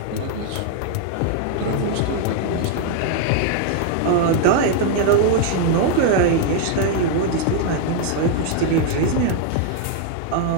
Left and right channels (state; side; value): different; both; correlation 0.00